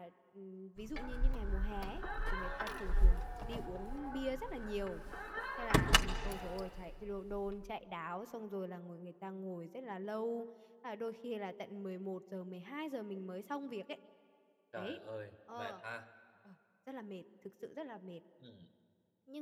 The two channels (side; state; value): both; identical; correlation 1.00